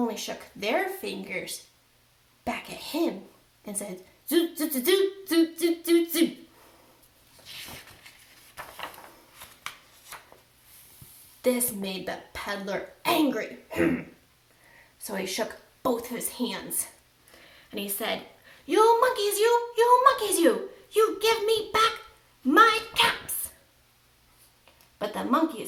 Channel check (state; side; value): identical; both; correlation 1.00